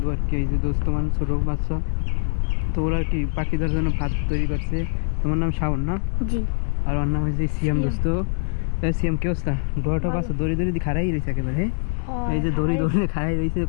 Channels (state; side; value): silent; right; 63 dB below the other